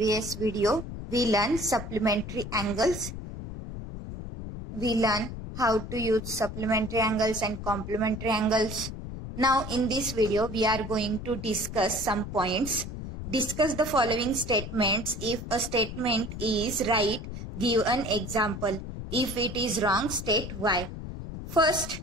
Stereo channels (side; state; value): left; noise; rumble, 8 dB below the sound